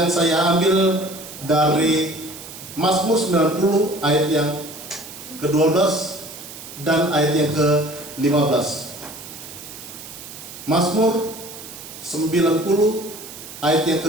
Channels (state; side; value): noise; right; hiss, 14 dB below the sound